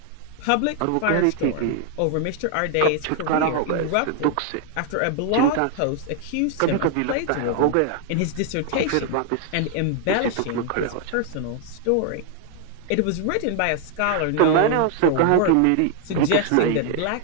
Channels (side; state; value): both; different; correlation 0.00